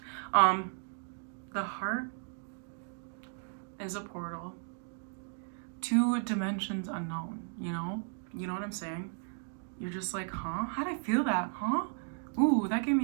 The heart is a portal to dimensions unknown, you know? You know what I'm saying? You're just like, huh? How'd I feel that, huh? Ooh, that gave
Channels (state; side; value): silent; left; 55 dB below the other